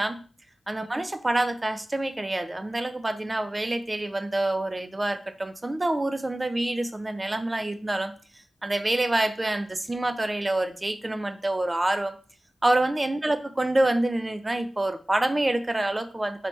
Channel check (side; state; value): both; normal; correlation 0.98